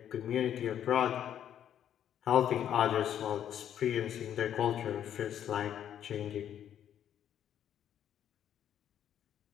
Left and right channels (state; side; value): quieter; right; 10.0 dB